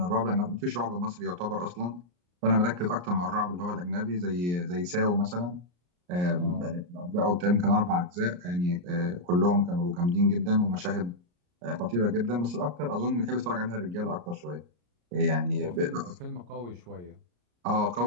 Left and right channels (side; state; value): left; late; 34 ms